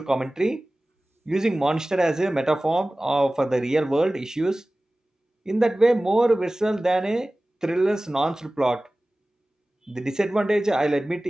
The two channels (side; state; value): both; normal; correlation 0.97